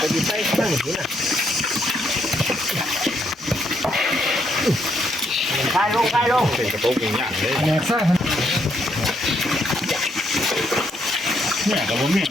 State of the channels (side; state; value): both; normal; correlation 0.75